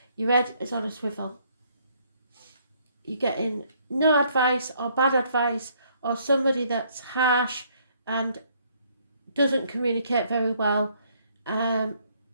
Your head is on a swivel. You're getting no advice or bad advice, or somebody that's harsh and doesn't communicate very well.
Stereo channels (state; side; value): inverted; both; correlation -0.66